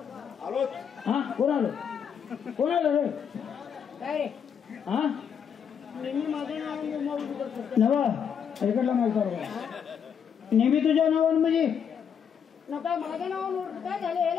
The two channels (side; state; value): right; quieter; 7.6 dB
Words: हा कोण आलं कोण आलं रे काय हा नवा इकडला माहिती नेहमी तुझ्या नावानं म्हणजे नका माझ्या नावानं काय झालं